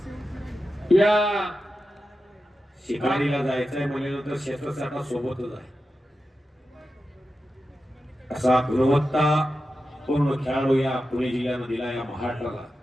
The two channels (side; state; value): both; normal; correlation 0.91